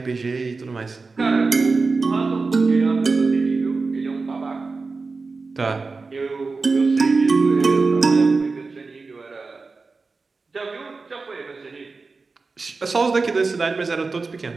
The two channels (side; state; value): left; quieter; 4.1 dB